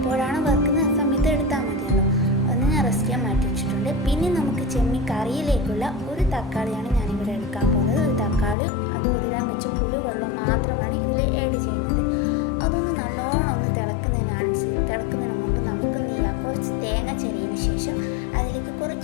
വറുക്കുന്നത് ആ സമയത്ത് എടുത്താൽ മതിയല്ലോ. അതൊന്ന് ഞാൻ റെസ്റ്റ് ചെയ്യാൻ മാറ്റി വെച്ചിട്ടുണ്ട്. പിന്നെ നമുക്ക് ചെമ്മീൻ കറിയിലേക്കുള്ള ഒരു തക്കാളിയാണ് ഞാനിവിടെ എടുക്കാൻ പോകുന്നത്. ഒരു തക്കാളിയും അത് കുതിരാൻ വെച്ച പുളി വെള്ളം മാത്രമാണ് ഇതിൽ ആഡ് ചെയ്യുന്നത്. അതൊന്ന് നല്ലോണം ഒന്ന് തിളക്കുന്നതിന് മുമ്പ് നമുക്ക് എന്ത് ചെയ്യാം, കുറച്ച് തേങ്ങ ചിരകിയതിന് ശേഷം അതിലേക്ക്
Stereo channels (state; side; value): drops out; right; at 8.6 s